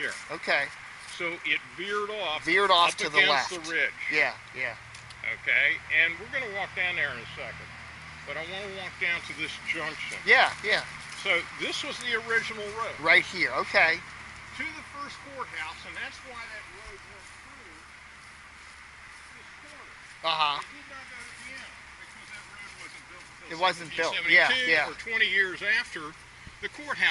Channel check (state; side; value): identical; both; correlation 1.00